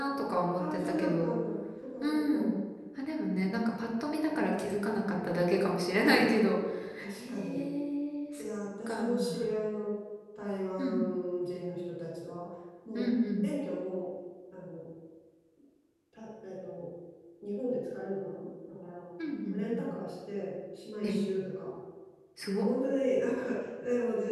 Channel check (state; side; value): identical; both; correlation 1.00